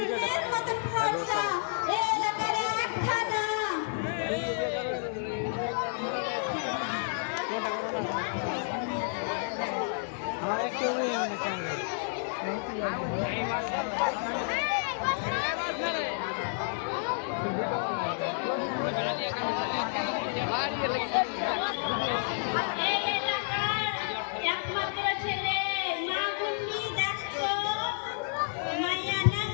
মতন ফর্সা। এই এলাকার এক খাদা। আমার একটা মেয়ে অনেক এই এলাকার একমাত্র ছেলে মা গুন্নি দেখতো মাইয়া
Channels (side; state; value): right; silent; digital silence